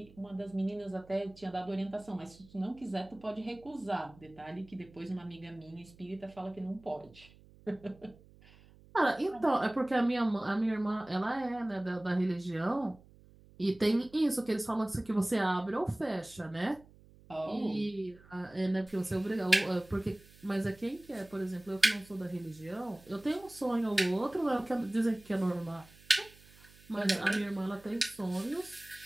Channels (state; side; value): noise; right; hum, 24 dB below the sound